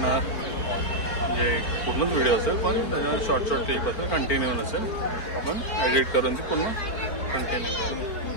म्हणजे पूर्णच व्हिडिओ असेल पण त्याच्यामध्ये शॉर्ट क्लिप असेल, कंटिन्यू नसेल. आपण एडिट करून ती पूर्ण कंटिन्यू करू.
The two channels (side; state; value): right; late; 4.4 ms